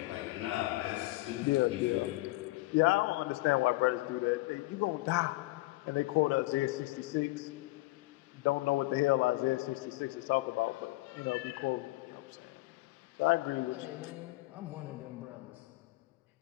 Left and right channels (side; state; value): right; quieter; 20.5 dB